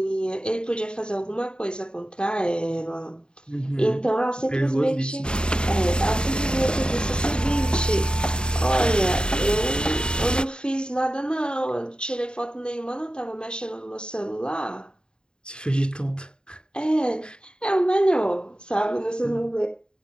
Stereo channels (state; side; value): late; right; 0.049 ms